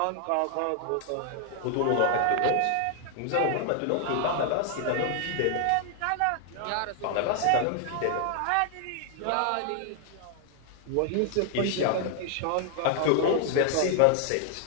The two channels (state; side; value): different; both; correlation 0.00